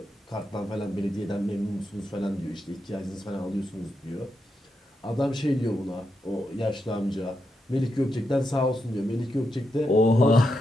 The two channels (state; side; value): normal; both; correlation 0.84